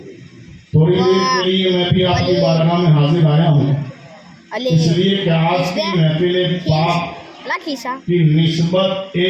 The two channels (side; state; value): both; identical; correlation 1.00